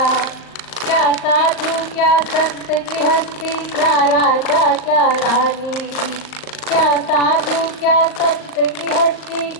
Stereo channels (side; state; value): right; late; 38 ms